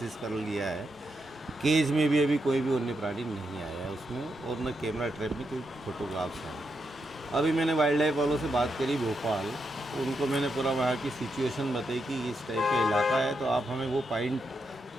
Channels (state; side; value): normal; both; correlation 0.83